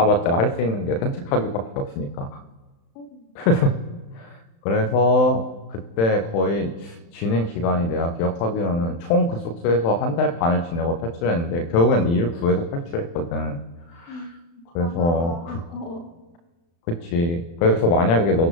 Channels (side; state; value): right; late; 35 ms